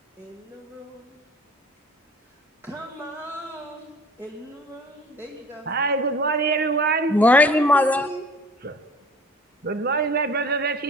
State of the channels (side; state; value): both; normal; correlation 0.46